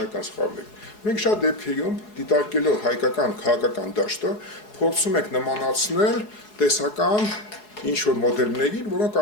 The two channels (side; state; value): right; late; 4.7 ms